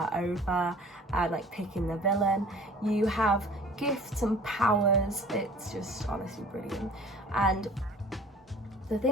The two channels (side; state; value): both; normal; correlation 0.47